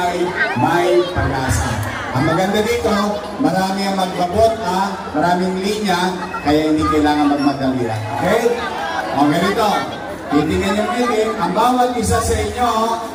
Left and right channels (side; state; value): both; identical; correlation 1.00